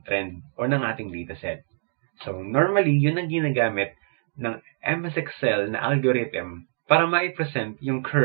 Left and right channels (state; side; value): silent; left; 60 dB below the other